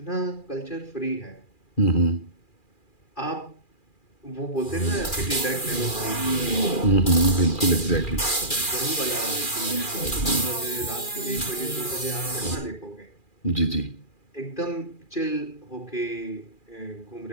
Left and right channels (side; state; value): right; late; 2.4 ms